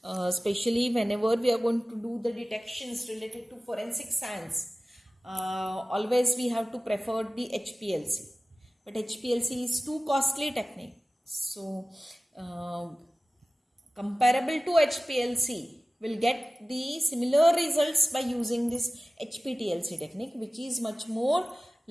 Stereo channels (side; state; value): both; normal; correlation 0.96